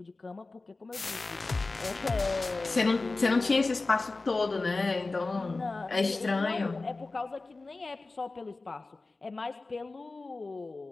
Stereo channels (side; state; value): right; quieter; 3.5 dB